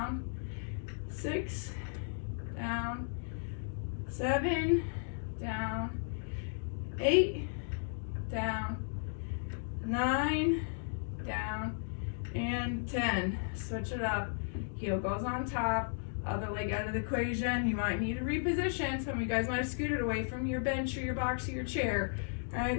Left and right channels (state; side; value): silent; right; digital silence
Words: 6, down. 7, down. 8, down. 9, down. And 10. Switch it up. Heel goes on top. Other leg out of the equation. You might need to reposition. Some of you guys might have scooted away from your bench or your box or your chair. All